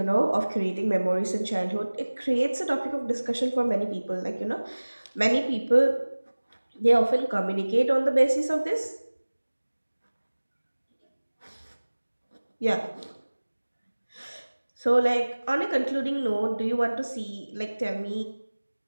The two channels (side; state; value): both; inverted; correlation -1.00